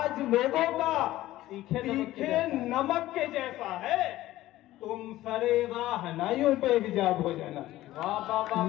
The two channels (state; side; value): quieter; right; 15.6 dB